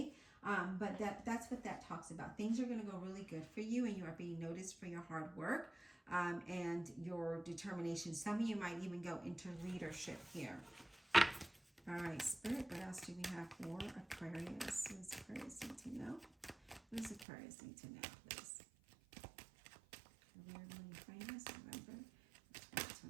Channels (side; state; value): left; drops out; at 17.2 s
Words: but that's what that talks about. Things are going to go really good for you, and you are being noticed for your hard work and your determination. Some of you might even go into leadership here. All right, Spirit, what else do we have for Aquarius? What does Aquarius need to know? What does Aquarius need to know, please? Career, money, finance, November